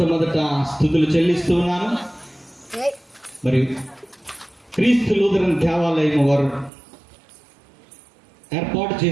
స్తుతులు చెల్లిస్తూ ఉన్నాను. మరి క్రీస్తు లూథరన్ దేవాలయం వారు ఏర్పాటు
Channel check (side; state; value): left; drops out; at 6.7 s